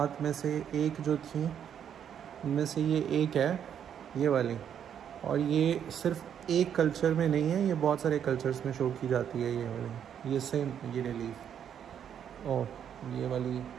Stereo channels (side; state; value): left; quieter; 8.8 dB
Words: में से एक जो थी, उनमें से ये एक है, ये वाली। और ये सिर्फ एक कल्चर में नहीं है, ये बहुत सारे कल्चर्स में शो की जाती है ये वाली। ये सेम ये रिलीफ और ये वाली